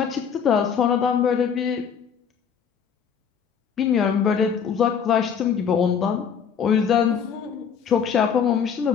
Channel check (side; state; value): right; quieter; 7.2 dB